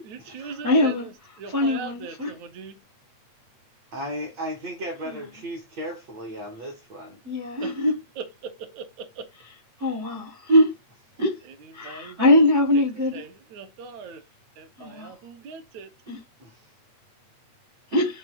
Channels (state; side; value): late; left; 8.6 ms